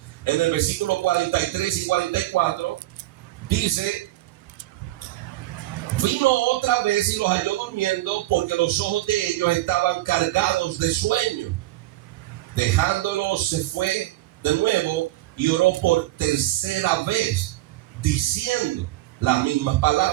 En el versículo 43 y 44 dice: vino otra vez y los halló durmiendo, porque los ojos de ellos estaban cargados de sueño. Dejándolos, se fue de nuevo y oró por tercera vez, diciendo las mismas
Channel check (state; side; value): quieter; left; 16.7 dB